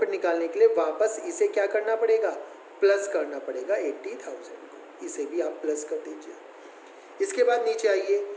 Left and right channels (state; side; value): identical; both; correlation 1.00